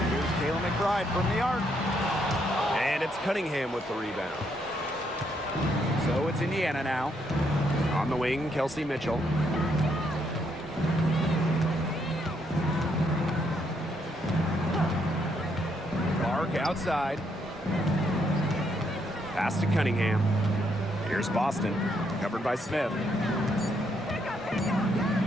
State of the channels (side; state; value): both; normal; correlation 0.74